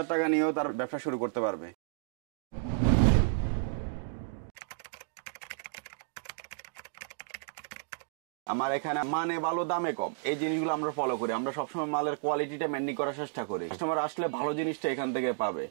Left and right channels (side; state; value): left; silent; digital silence